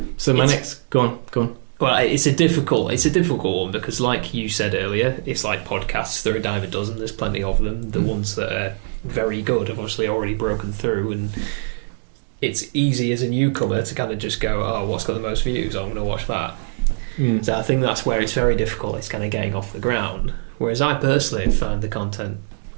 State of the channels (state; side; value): silent; left; digital silence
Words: so my next... Go on. Well, it's a difficult one, because like you said earlier, it's like podcasts. There are a dime a dozen. There's plenty of them. The ones that are very good have obviously already broken through, and it's easy as a newcomer to kind of just go, oh, what's got the most views? I'm going to watch that. So I think that's where it's very difficult. It's kind of getting off the ground. Whereas I personally find the content,